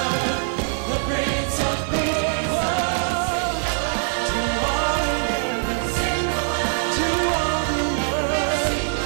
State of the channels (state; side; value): silent; left; digital silence